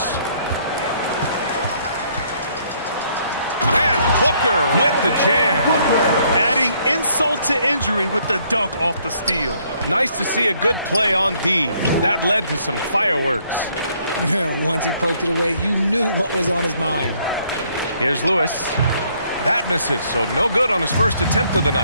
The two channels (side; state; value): both; inverted; correlation -0.67